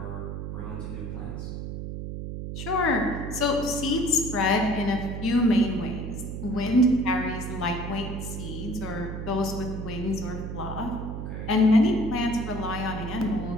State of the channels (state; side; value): noise; right; hum, 6 dB below the sound